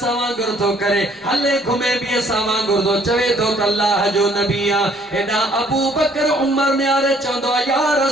वांगुरु थो करे हले घुमे बि असां वांगुरु थो चवे थो त अल्लाह जो नबी आ हेॾा अबू बकर उमर निहारे चवंदो आ या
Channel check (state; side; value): normal; both; correlation 0.61